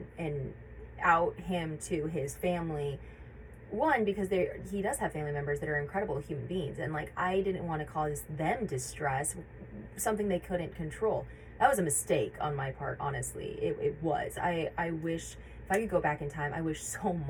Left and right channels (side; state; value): both; identical; correlation 1.00